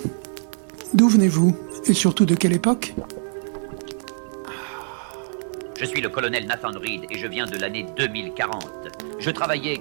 D'où venez-vous? Et surtout de quelle époque? Je suis le colonel Nathan Reed et je viens de l'année 2040. Je travaillais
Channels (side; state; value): left; silent; digital silence